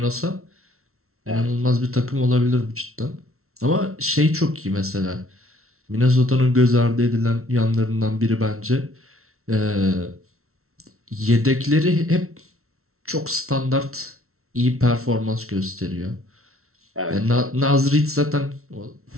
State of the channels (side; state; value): left; late; 0.63 ms